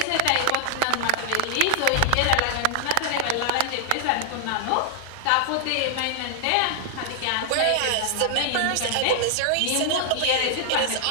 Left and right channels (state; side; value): different; both; correlation -0.01